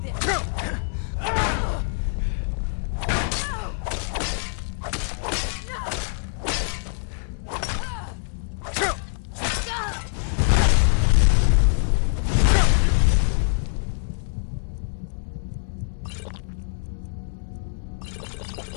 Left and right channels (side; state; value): right; silent; 62 dB below the other